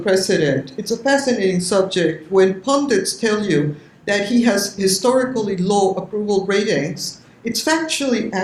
president, it's a fascinating subject. When pundits tell you that he has historically low approval ratings, it's factually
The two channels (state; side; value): identical; both; correlation 1.00